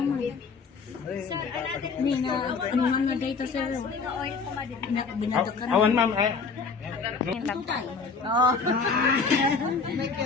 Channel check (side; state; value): right; quieter; 4.9 dB